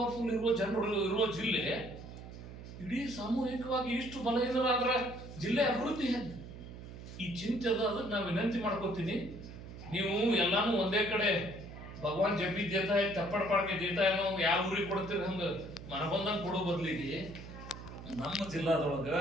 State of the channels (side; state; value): right; noise; hum, 13 dB below the sound